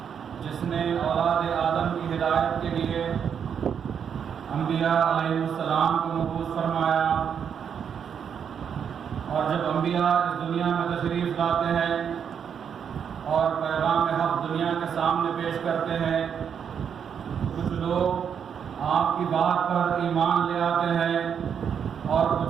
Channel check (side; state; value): left; quieter; 7.6 dB